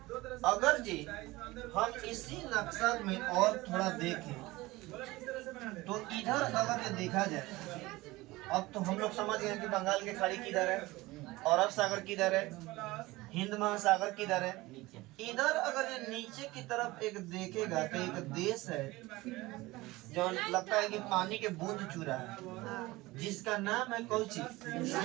अगर जी हम इसी नक्शा में और थोड़ा देखें तो इधर अगर ये देखा जाए, अब तो हम लोग समझ गए कि बंगाल की खाड़ी किधर है, अरब सागर किधर है, हिंद महासागर किधर है। इधर अगर ये नीचे की तरफ एक देखेगा तो एक देश है जो लगता है कि पानी के बूंद चू रहा है, जिसका नाम है कोची,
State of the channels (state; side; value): quieter; left; 20.0 dB